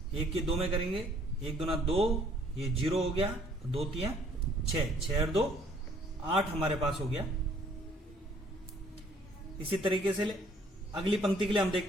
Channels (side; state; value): both; normal; correlation 0.61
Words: 1 की 2 में करेंगे, 1 दूना 2, ये 0 हो गया, 2 3 6, 6 और 2 8 हमारे पास हो गया। इसी तरीके से अगली पंक्ति के लिए हम